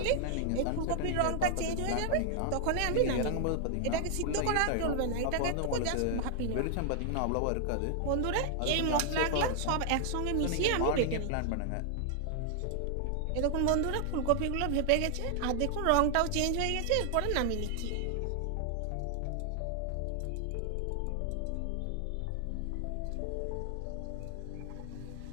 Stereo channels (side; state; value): both; different; correlation 0.00